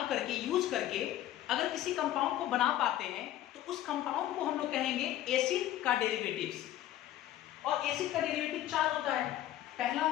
करके, यूज करके अगर किसी कंपाउंड को बना पाते हैं, तो उस कंपाउंड को हम लोग कहेंगे एसिड का डेरिवेटिव्स। और एसिड का डेरिवेटिव 4 होता है। पहला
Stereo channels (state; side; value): quieter; right; 13.1 dB